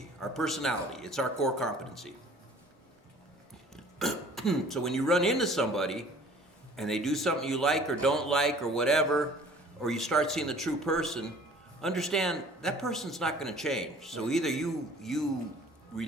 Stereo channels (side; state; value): both; normal; correlation 0.50